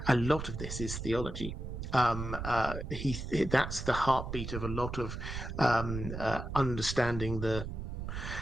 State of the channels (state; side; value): noise; right; rumble, 6 dB below the sound